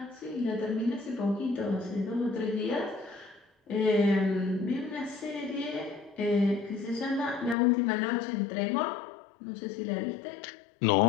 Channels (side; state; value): right; drops out; at 7.6 s